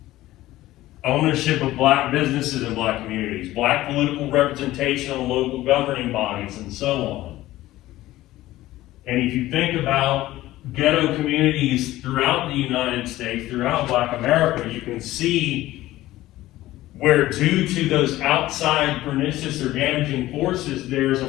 Ownership of black businesses and black communities. Black political representation on local governing bodies, and so on. And if you think about ghetto communities throughout the United States, throughout Black America, you can see where due to those outside pernicious or damaging forces, there's a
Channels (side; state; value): right; quieter; 16.1 dB